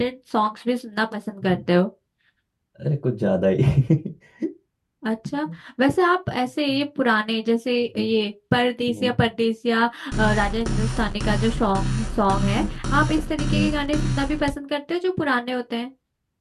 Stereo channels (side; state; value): both; identical; correlation 1.00